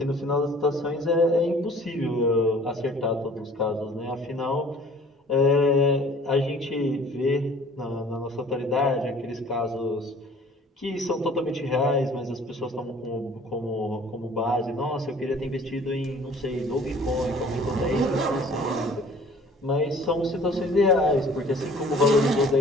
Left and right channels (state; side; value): normal; both; correlation 0.51